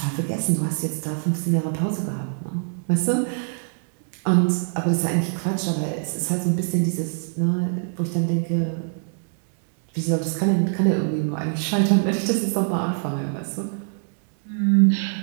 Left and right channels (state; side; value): silent; left; 63 dB below the other